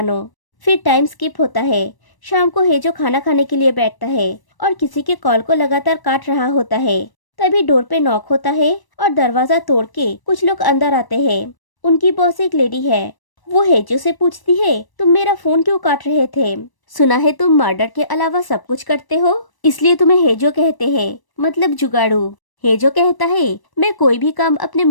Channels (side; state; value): right; late; 1.0 ms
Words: फिर टाइम स्किप होता है। शाम को हेजो खाना खाने के लिए बैठता है और किसी के कॉल को लगातार काट रहा होता है। तभी डोर पे नॉक होता है और दरवाजा तोड़ के कुछ लोग अंदर आते हैं। उनकी बॉस एक लेडी है। वो हेजो से पूछती है, तुम मेरा फोन क्यों काट रहे थे। सुना है तुम मर्डर के अलावा सब कुछ करते हो, इसलिए तुम्हें हेजो कहते हैं, मतलब जुगाड़ू। हेजो कहता है, मैं कोई भी काम अपने